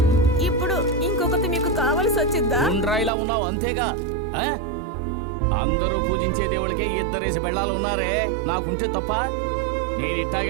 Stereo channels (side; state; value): left; drops out; at 3.1 s